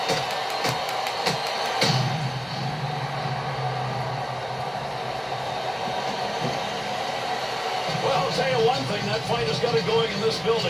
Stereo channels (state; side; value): identical; both; correlation 1.00